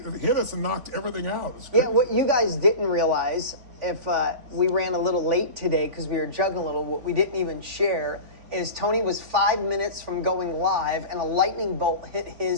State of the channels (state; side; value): late; left; 3.5 ms